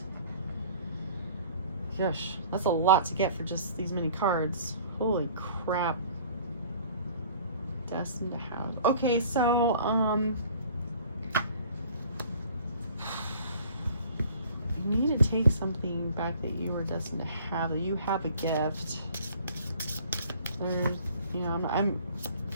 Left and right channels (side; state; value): both; inverted; correlation -0.50